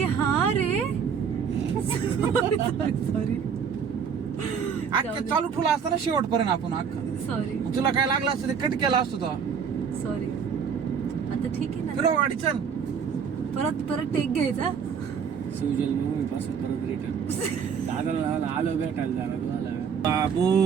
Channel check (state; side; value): quieter; left; 6.9 dB